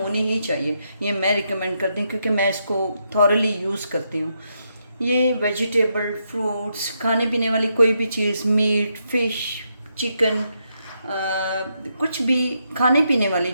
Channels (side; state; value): both; inverted; correlation -0.81